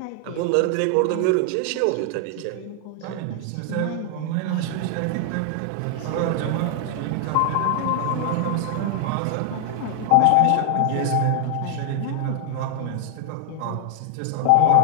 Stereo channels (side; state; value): both; different; correlation 0.00